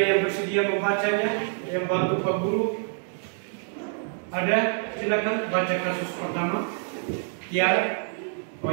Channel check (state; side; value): silent; left; 61 dB below the other